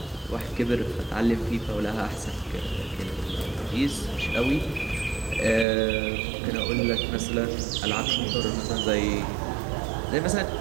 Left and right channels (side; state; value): left; drops out; at 5.7 s